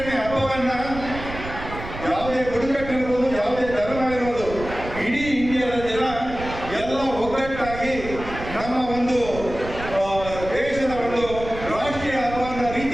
ಹಬ್ಬವನ್ನ ಯಾವುದೇ ಬುಡಕಟ್ಟು ಇರ್ಬೋದು, ಯಾವುದೇ ಧರ್ಮ ಇರ್ಬೋದು, ಇಡೀ ಇಂಡಿಯಾದ ಜನ ಎಲ್ಲ ಒಗ್ಗಟ್ಟಾಗಿ ನಮ್ಮ ಒಂದು ದೇಶದ ಒಂದು ರಾಷ್ಟ್ರೀಯ ಹಬ್ಬದ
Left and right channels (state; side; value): noise; right; rumble, 11 dB below the sound